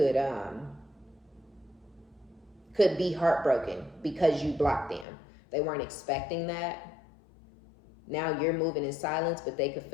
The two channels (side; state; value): right; drops out; at 5.1 s